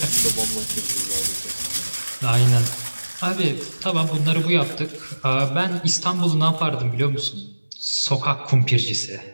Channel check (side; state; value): both; inverted; correlation -1.00